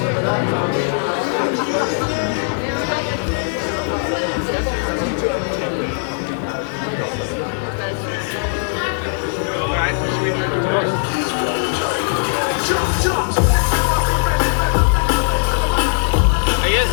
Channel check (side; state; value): right; silent; digital silence